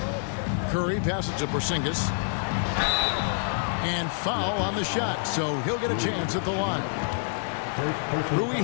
Curry passes to Porzingis. And foul on the shot, so he'll get a chance at the line. Rui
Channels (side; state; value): right; silent; 60 dB below the other